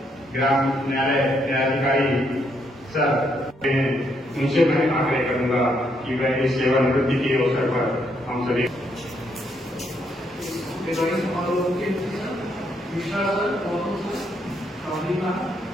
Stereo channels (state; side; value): normal; both; correlation 0.75